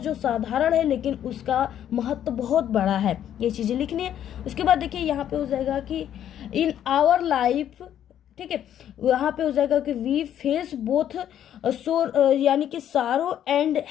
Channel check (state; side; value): quieter; right; 10.4 dB